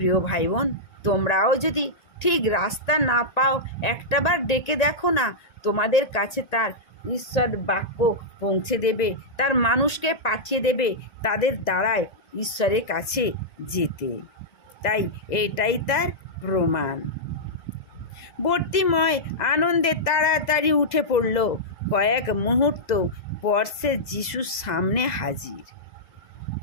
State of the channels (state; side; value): late; right; 2.0 ms